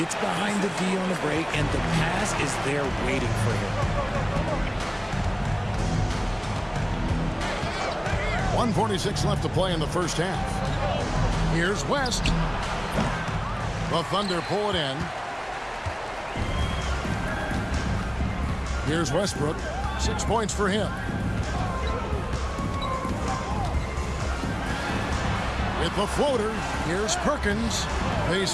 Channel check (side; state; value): both; identical; correlation 1.00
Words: behind the D on the break, and the pass is there waiting for him. 1:46 left to play in the first half. Here's West. The Thunder pull it in. Here's Westbrook. 6 points for him. With the floater, here's Perkins.